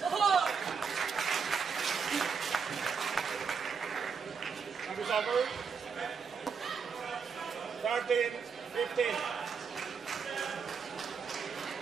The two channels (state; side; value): quieter; left; 5.9 dB